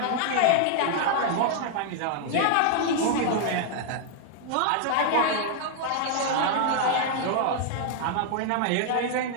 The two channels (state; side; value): different; both; correlation 0.00